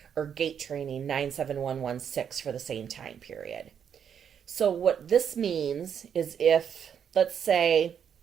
or Gait Training 97116 for the same time period. So what this means is if, let's say,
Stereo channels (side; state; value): left; quieter; 8.0 dB